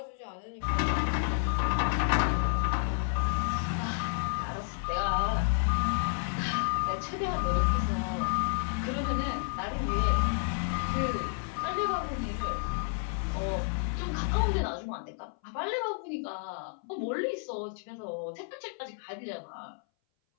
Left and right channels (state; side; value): silent; right; 57 dB below the other